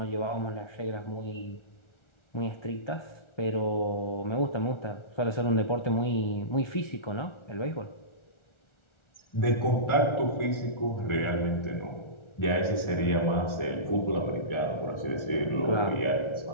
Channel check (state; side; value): late; right; 1.4 ms